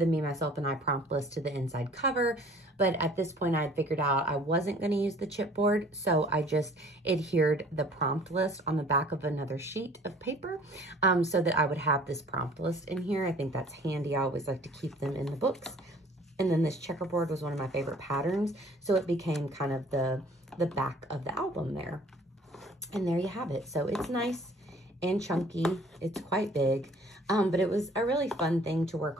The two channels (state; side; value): normal; both; correlation 0.53